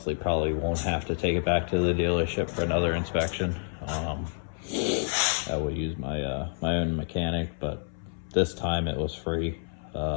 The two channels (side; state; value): right; silent; 59 dB below the other